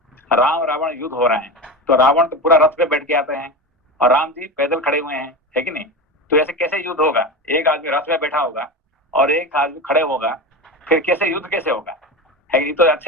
राम रावण युद्ध हो रहा है, तो रावण तो पूरा रथ पे बैठ के आते हैं और राम जी पैदल खड़े हुए हैं, है कि नहीं? तो ऐसे कैसे युद्ध होगा? एक आदमी रथ पे बैठा होगा और एक आदमी खड़े होगा, फिर कैसे युद्ध कैसे होगा? है कि तो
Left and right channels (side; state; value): both; normal; correlation 0.23